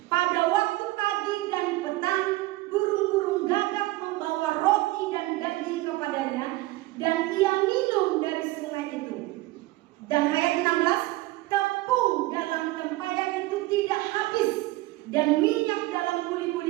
Pada waktu pagi dan petang, burung-burung gagak membawa roti dan daging kepadanya, dan ia minum dari sungai itu. Dan ayat 16, tepung dalam tempayan itu tidak habis, dan minyak dalam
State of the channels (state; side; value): quieter; left; 19.4 dB